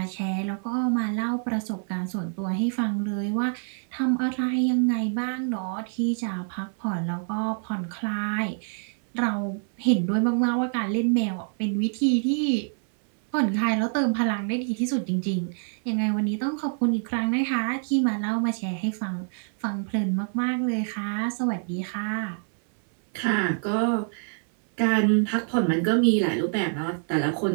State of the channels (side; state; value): left; silent; 58 dB below the other